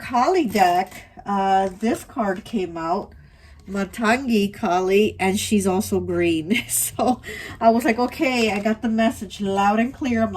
deck, this card came out, Matangi Kali, and she's also green. So I was like, okay, I got the message loud and clear. I'm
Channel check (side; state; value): both; identical; correlation 1.00